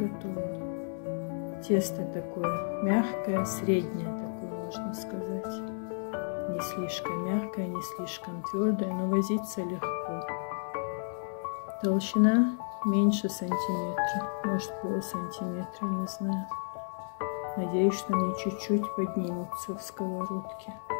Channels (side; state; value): right; silent; digital silence